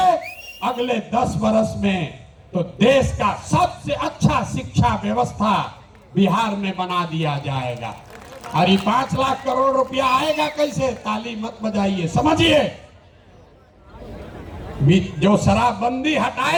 अगले 10 वर्ष में, तो देश का सबसे अच्छा शिक्षा व्यवस्था बिहार में बना दिया जाएगा। और ये 5 लाख करोड़ रुपया आएगा कैसे? ताली मत बजाइए, समझिए। जो शराबबंदी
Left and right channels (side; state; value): both; identical; correlation 1.00